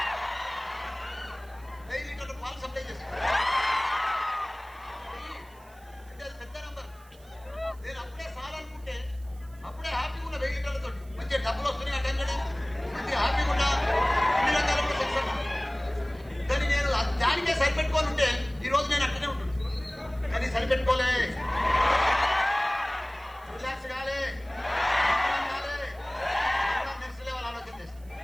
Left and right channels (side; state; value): right; noise; hiss, 27 dB below the sound